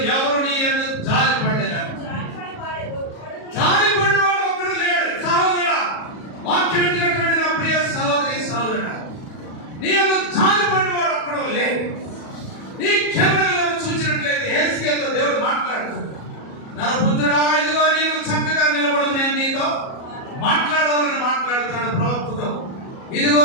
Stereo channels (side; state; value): right; late; 37 ms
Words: ఎవరు నీ యందు జాలిపడలేదు. జాలిపడినవాడు ఒక్కడు లేడు. సహోదరా, వాక్యం వింటున్నటువంటి నా ప్రియ సహోదరి సహోదరుడా, నీ యందు జాలిపడినవాడు ఒక్కడు లేడు. నీ క్షేమం చూసినట్లయితే యెహెజ్కేలుతో దేవుడు మాట్లాడుతున్నాడు. నరపుత్రుడా, ఇదిగో నీవు చక్కగా నిలబడు, నేను నీతో మాట్లాడాలని మాట్లాడుతున్నాడు ప్రవక్తతో. ఇదిగో